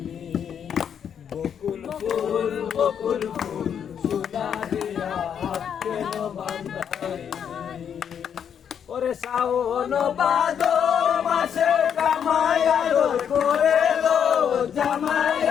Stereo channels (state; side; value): quieter; right; 8.2 dB